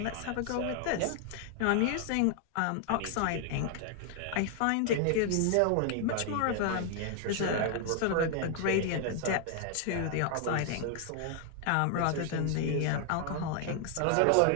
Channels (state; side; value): different; both; correlation 0.00